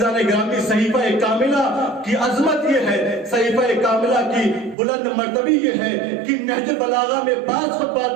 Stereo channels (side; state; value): left; drops out; at 4.8 s